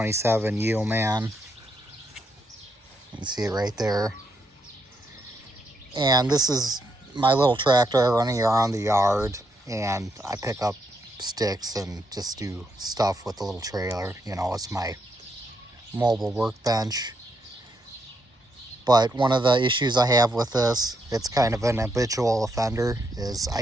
Yeoman. You can see it right there. And this is my little tractor running around the yard, and I pick up sticks and just do stuff with the little trailer. You know, it's my mobile workbench. But one of the issues I have with this, it's kind of an habitual offender, is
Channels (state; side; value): normal; both; correlation 0.78